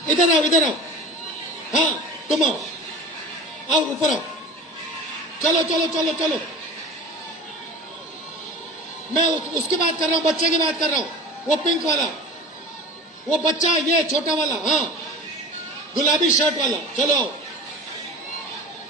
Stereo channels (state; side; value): normal; both; correlation 0.35